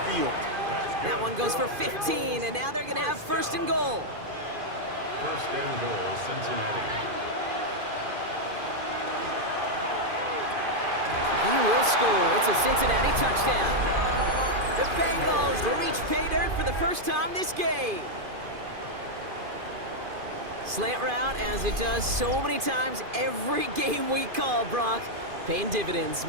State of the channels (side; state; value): left; late; 2.5 ms